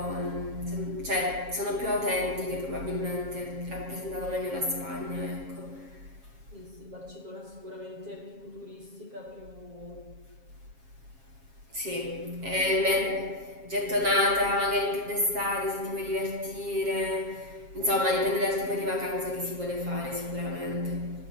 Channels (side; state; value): left; late; 7.4 ms